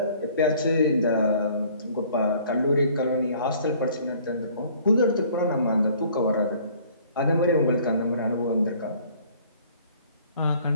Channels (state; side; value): inverted; both; correlation -0.55